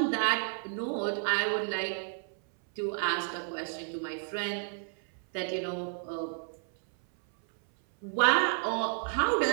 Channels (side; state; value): left; silent; 57 dB below the other